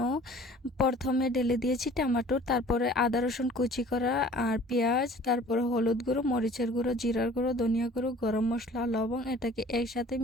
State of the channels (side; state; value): both; normal; correlation 0.49